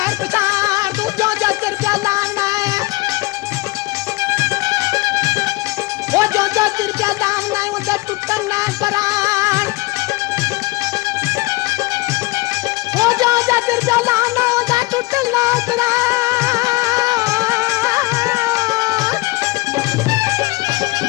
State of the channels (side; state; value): right; quieter; 22.2 dB